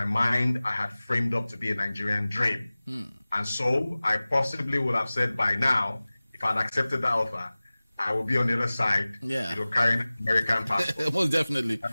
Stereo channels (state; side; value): inverted; both; correlation -0.99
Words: mind I had framed up to be a Nigerian dream. And so I possibly would have said by now, if I'd accepted that offer, I will be on the other side, carrying an American passport. Most definitely.